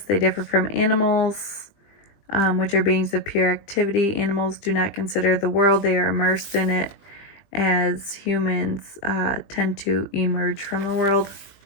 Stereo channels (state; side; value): late; right; 20 ms